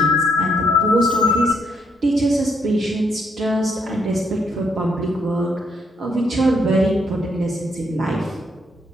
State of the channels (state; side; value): normal; both; correlation 0.74